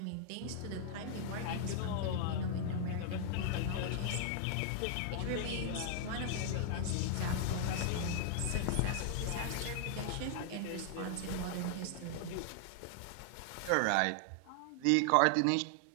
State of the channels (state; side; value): different; both; correlation 0.00